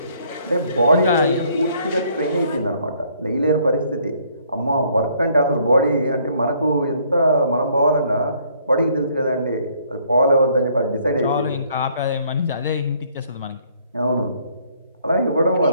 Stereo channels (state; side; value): inverted; both; correlation -0.64